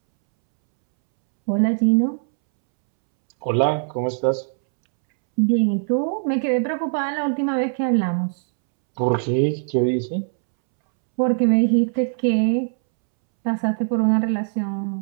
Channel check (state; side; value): silent; left; 65 dB below the other